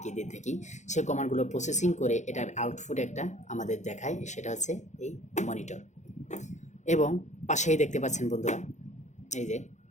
দিয়ে থাকি, সেই কমান্ডগুলো প্রসেসিং করে এটার আউটপুট একটা আমাদের দেখায়, সেটা হচ্ছে এই মনিটর। এবং পাশেই দেখতে পাচ্ছেন বন্ধুরা, এই যে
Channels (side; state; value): right; late; 0.34 ms